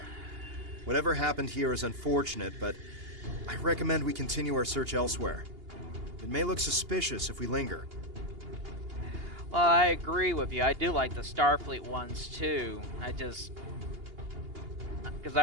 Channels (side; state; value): left; late; 2.8 ms